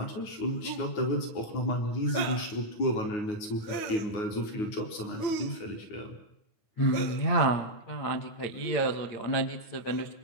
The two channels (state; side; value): late; right; 9.5 ms